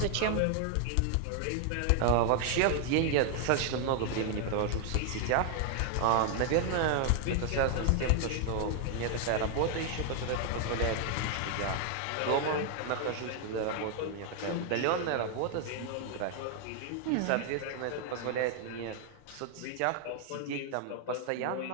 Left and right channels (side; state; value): both; different; correlation 0.00